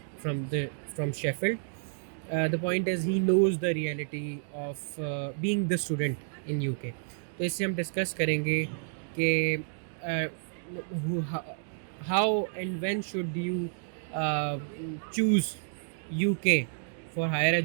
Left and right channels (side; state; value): left; silent; digital silence